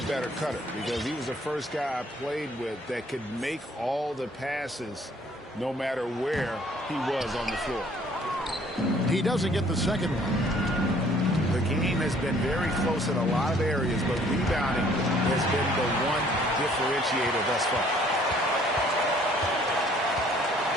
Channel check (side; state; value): both; normal; correlation 0.59